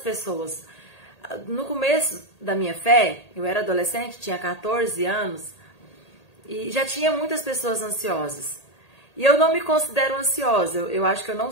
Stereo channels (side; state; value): right; late; 1.8 ms